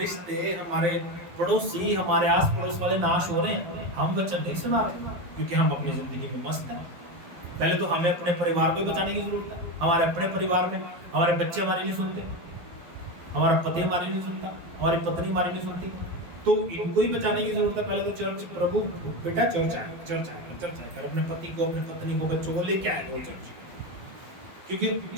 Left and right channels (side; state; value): left; late; 12 ms